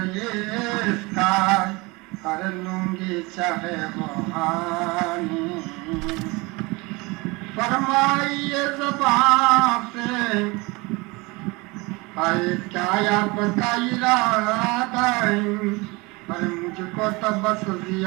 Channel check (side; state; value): left; quieter; 25.0 dB